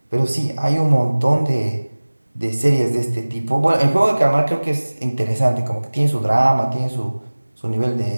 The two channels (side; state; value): both; inverted; correlation -1.00